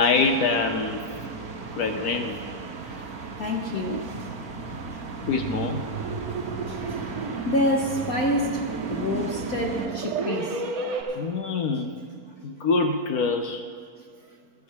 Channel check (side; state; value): right; late; 4.4 ms